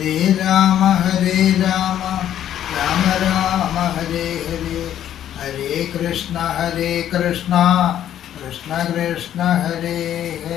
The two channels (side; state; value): right; quieter; 11.0 dB